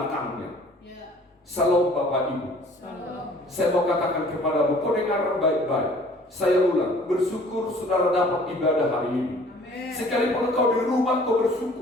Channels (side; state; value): both; normal; correlation 0.53